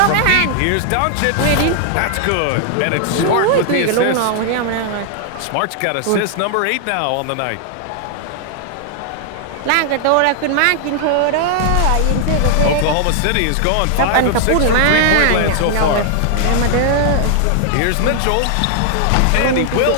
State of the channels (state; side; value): different; both; correlation 0.00